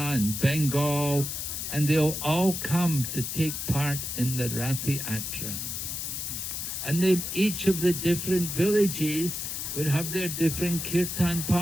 Bengal, and they'll all come to take part in the Ratha Yatra. And each of the different villages would have their different kirtan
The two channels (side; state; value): left; noise; hiss, 4 dB below the sound